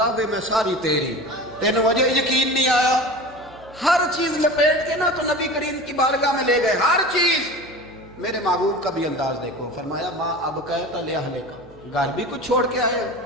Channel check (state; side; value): noise; right; hum, 24 dB below the sound